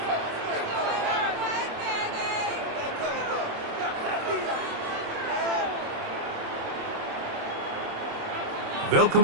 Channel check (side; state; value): left; late; 27 ms